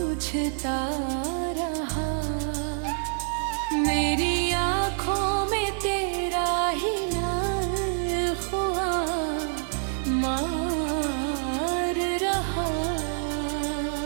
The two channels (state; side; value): silent; left; 59 dB below the other